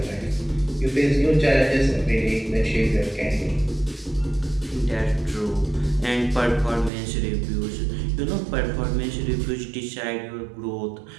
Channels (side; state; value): left; drops out; at 6.9 s